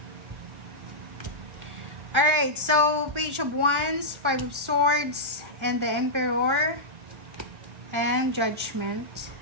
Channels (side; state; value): left; late; 1.4 ms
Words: Alright, so, Page of Wands, Five of Swords, and the Emperor, and Judgment.